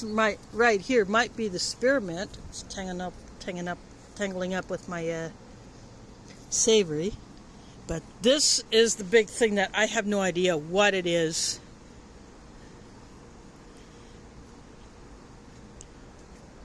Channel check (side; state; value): both; identical; correlation 1.00